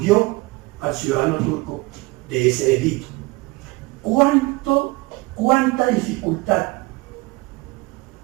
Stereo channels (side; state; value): left; quieter; 23.6 dB